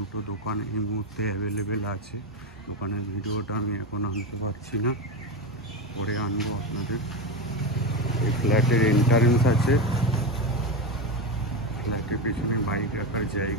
দোকান এই মুহূর্তে অ্যাভেলেবেল আছে। দোকানের ভিডিওটা আমি এখন আনতে পারছি না, পরে আনবো আপনাদের। এই ফ্ল্যাটের এন্ট্রান্স আছে, ফ্ল্যাটের পেছনে বাইক রাখার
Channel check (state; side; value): normal; both; correlation 0.16